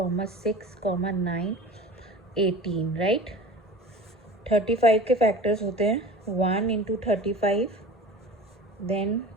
6, 9, 18. राइट. 35 के फैक्टर्स होते हैं 1 इंटू 35, देन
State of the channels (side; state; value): both; normal; correlation 0.38